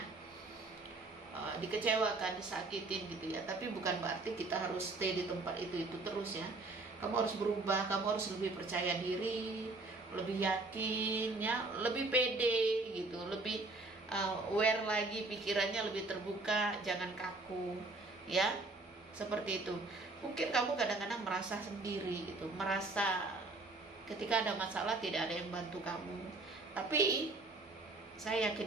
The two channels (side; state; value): left; quieter; 3.2 dB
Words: dikecewakan, disakitin gitu, ya. Tapi bukan berarti kita harus stay di tempat itu terus, ya. Kamu harus berubah, kamu harus lebih percaya diri, lebih yakin, ya, lebih pede gitu, lebih aware lagi, pikirannya lebih terbuka, jangan kaku, ya. Seperti itu. Mungkin kamu kadang-kadang merasa sendiri gitu, merasa ketika ada masalah tidak ada yang bantu kamu. Tapi saya